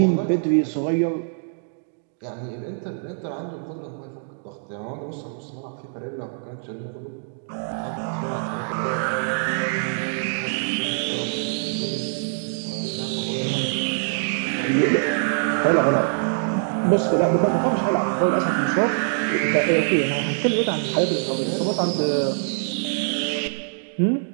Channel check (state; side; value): silent; left; digital silence